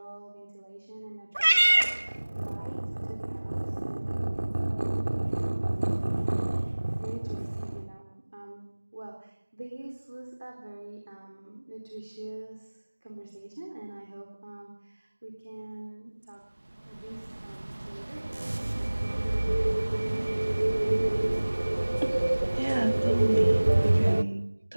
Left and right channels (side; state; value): both; inverted; correlation -1.00